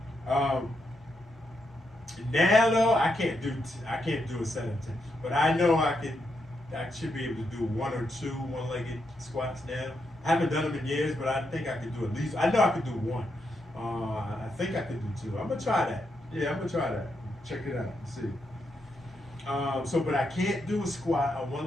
Now though, I can't do a set of 10, but I know I should be able to do one or two one-legged squats now. I haven't done them in years, but I think I could do at least. I know I could do one. I think I could do two. I'm gonna try that. Yeah, I'm gonna try that. Check it out and see. But I can't do a squat, a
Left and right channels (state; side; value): normal; both; correlation 0.81